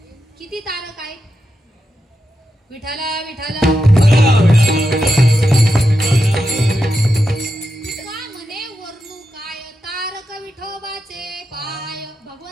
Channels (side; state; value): both; normal; correlation 0.87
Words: किती तारक आहेत? विठाला विठाला तुका म्हणे वर्णू काय तारक विठोबाचे पाय.